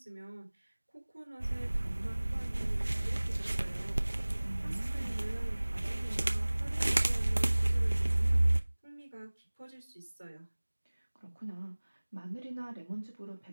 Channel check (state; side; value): inverted; both; correlation -1.00